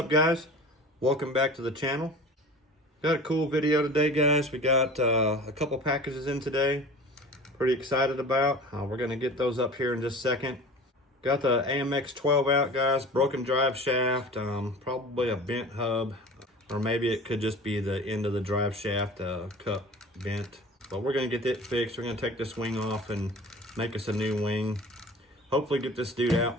guys? Welcome back to the channel. Got a cool video today, guys. We got a couple packages in today. Pretty excited about. We're gonna get those up here in just a second. Got the AMX 12 out, guys. Broken drive shaft, probably a bent hub, or maybe it could just be the end of the drive shaft cup bent. But we're gonna get it fixed. We're gonna take this wing off and make us a new wing. Hopefully get this dude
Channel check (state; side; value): normal; both; correlation 0.40